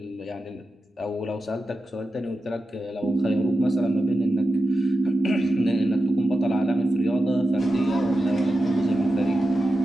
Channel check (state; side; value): normal; both; correlation 0.91